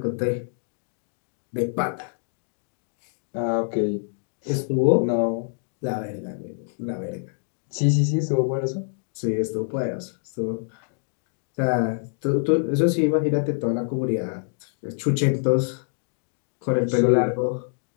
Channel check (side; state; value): right; silent; digital silence